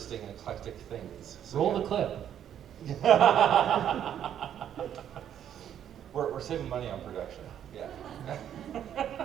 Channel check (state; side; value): quieter; left; 9.8 dB